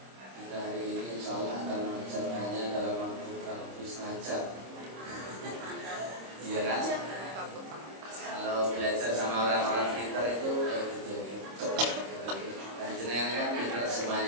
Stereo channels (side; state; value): left; late; 26 ms